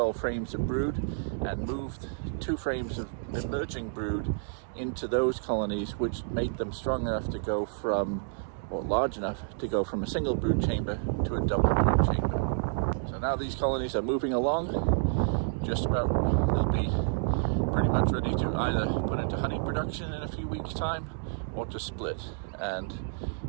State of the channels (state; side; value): silent; left; digital silence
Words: frames of brood, and moved 2 frames of emerging brood into those colonies which made them strong enough to go from, or large enough to go from a single brood chamber to a double brood chamber. So now these colonies are moving along, just about, they'll be pretty much ready to either put into honey production in a few weeks time or to split. And